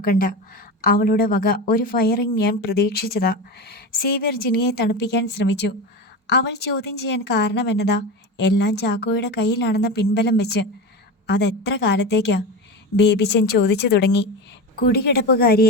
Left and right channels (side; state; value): both; normal; correlation 0.24